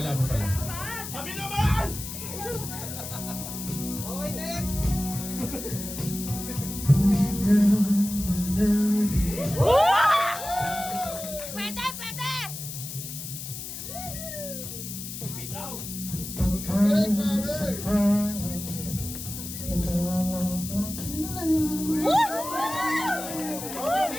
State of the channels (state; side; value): noise; left; hiss, 8 dB below the sound